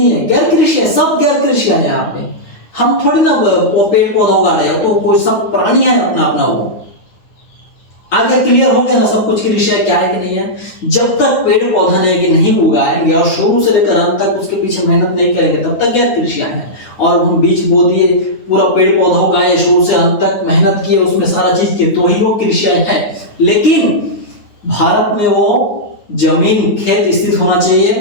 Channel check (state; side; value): late; right; 9.4 ms